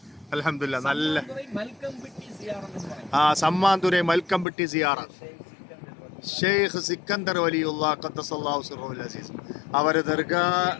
അൽഹംദുലില്ലാ. നല്ല സമ്മാന്തുരൈ മൽക്കംപിട്ടി സിയാറ. ഷെയ്ഖ് സിക്കന്ദർ വലിയുല്ലാ ഖദ്ദസല്ലാഹു സിർറഹുൽ അസീസ് അവരെ ദർഗാ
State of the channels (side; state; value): right; drops out; at 4.5 s